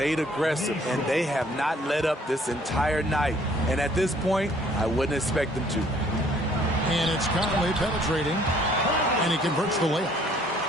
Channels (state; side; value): normal; both; correlation 0.60